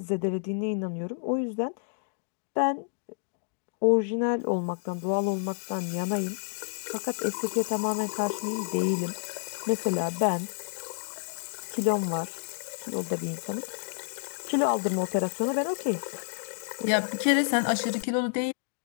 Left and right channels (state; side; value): silent; right; digital silence